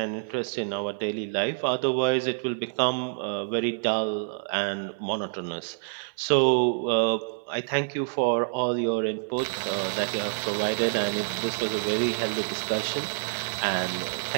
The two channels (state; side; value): silent; left; 60 dB below the other